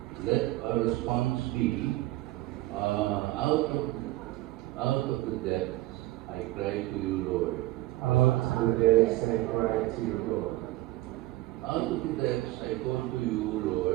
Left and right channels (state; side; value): quieter; left; 17.4 dB